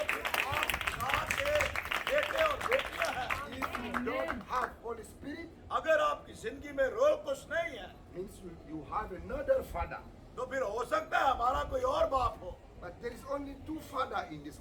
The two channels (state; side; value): identical; both; correlation 1.00